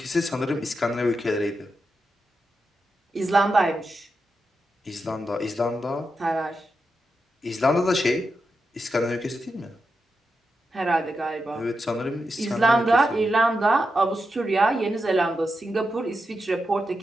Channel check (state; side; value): normal; both; correlation 0.87